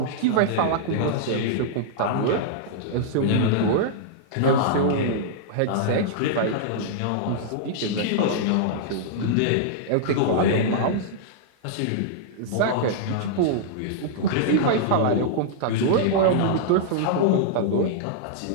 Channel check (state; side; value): different; both; correlation -0.02